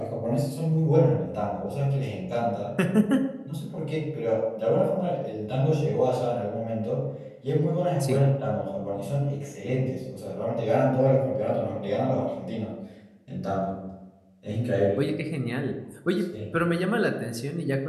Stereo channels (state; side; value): identical; both; correlation 1.00